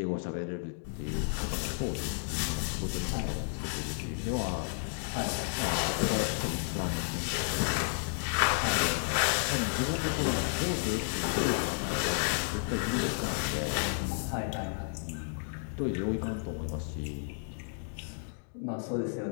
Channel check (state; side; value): silent; right; digital silence